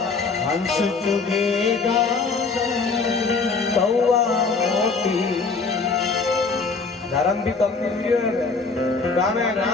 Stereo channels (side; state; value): right; quieter; 4.4 dB